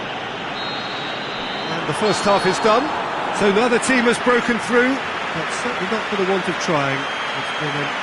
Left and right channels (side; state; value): both; identical; correlation 1.00